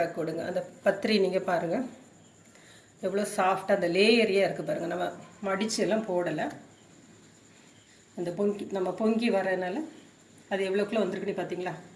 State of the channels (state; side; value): identical; both; correlation 1.00